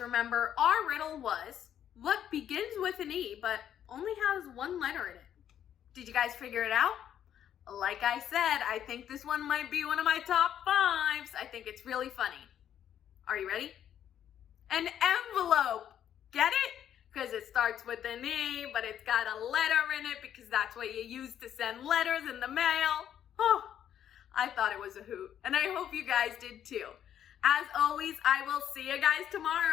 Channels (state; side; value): quieter; right; 10.0 dB